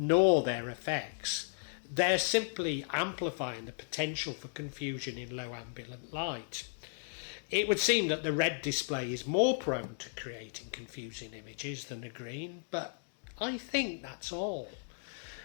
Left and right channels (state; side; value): silent; right; digital silence